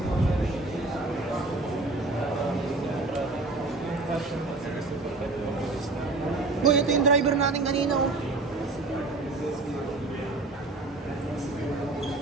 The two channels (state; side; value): quieter; left; 3.3 dB